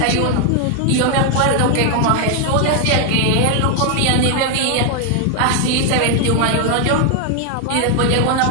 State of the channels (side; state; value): both; different; correlation 0.00